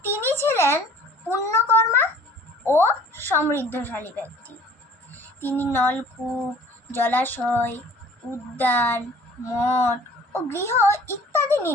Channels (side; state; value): both; normal; correlation 0.51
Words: তিনি ছিলেন পুণ্যকর্মা ও সমৃদ্ধশালী ব্যক্তি। তিনি নলকূপ, জলাশয়, উদ্যান, মঠ ও গৃহ ইত্যাদি